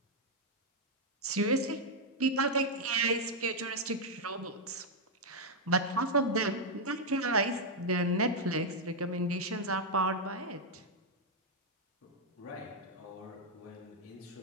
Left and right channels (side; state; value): both; normal; correlation -0.02